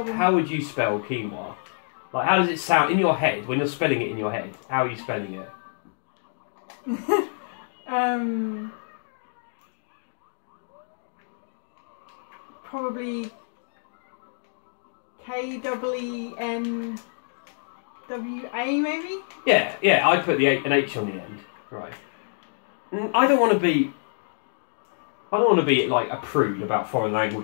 you spell quinoa? Like, how does it sound in your head when you're spelling it in your head? How are you spelling it? Probably K-E-E-N-W-A maybe? Yeah, I'd put an H on the end. Right. I don't want to be like a prude about foreign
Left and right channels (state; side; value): silent; right; digital silence